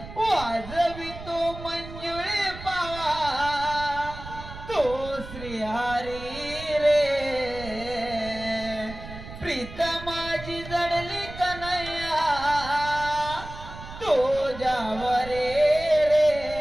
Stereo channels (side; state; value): right; noise; rumble, 13 dB below the sound